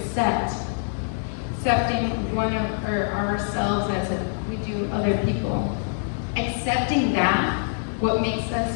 one of ourselves as we do other people. Accepting that, what makes us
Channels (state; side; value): silent; right; digital silence